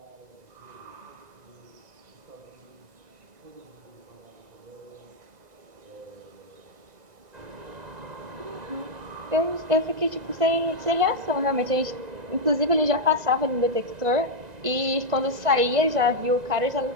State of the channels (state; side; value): late; left; 2.0 ms